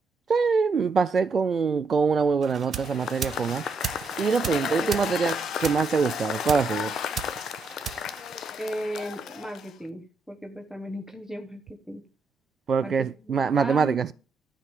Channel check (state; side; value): quieter; left; 3.8 dB